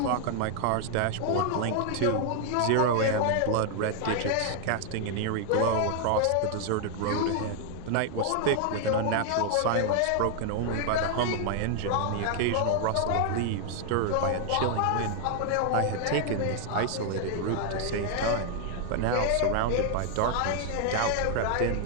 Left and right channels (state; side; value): different; both; correlation 0.00